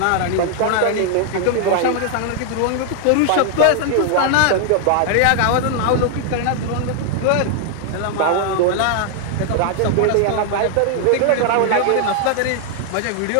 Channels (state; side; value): different; both; correlation 0.00